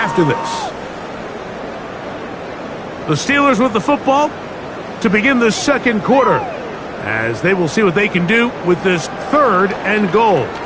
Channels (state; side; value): identical; both; correlation 1.00